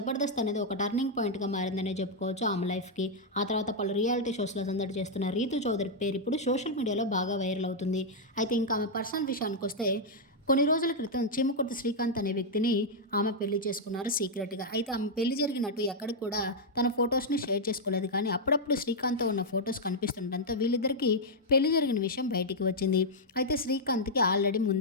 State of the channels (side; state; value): both; normal; correlation -0.04